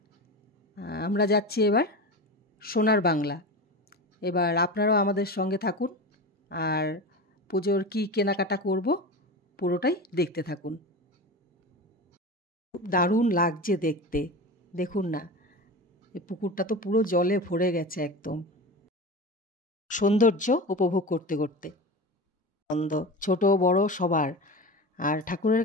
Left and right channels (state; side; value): normal; both; correlation 0.27